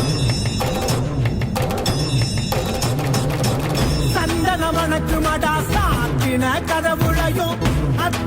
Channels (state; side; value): identical; both; correlation 1.00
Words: மணக்குமடா சாத்தின கதவுளையும்